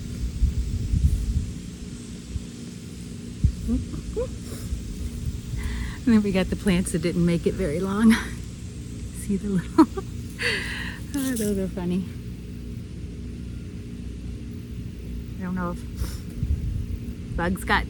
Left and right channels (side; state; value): both; identical; correlation 1.00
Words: And then we got the plants that didn't make it very long. See the little, oh, those are funny. I don't know if bugs got